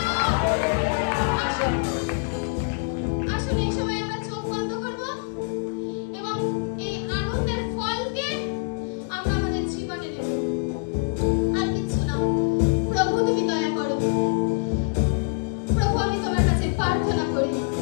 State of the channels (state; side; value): silent; right; 62 dB below the other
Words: আসুন, আসুন, এই সময় আমরা চোখ বন্ধ করব এবং এই আনন্দের ফলকে আমরা আমাদের জীবনে নেব। আর কিছু না। প্রভু, তুমি দয়া করো। প্রভু, আমি তোমার কাছে প্রার্থনা করি।